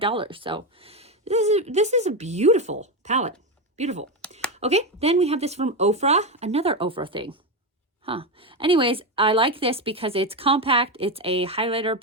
So this is a beautiful palette. Beautiful. Okay, then we have this from Ofra, another Ofra thing. Anyways, I like this because it's compact. It's a highlighter,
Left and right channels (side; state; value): both; normal; correlation 0.13